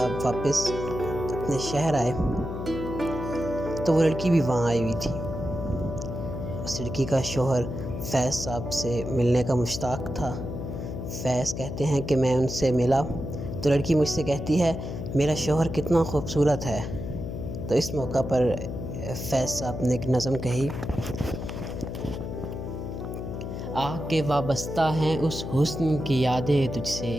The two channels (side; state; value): left; noise; hum, 6 dB below the sound